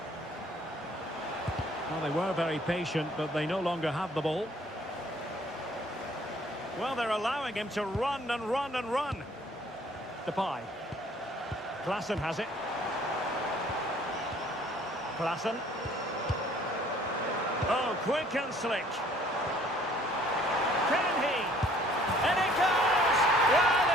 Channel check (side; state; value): both; normal; correlation 0.58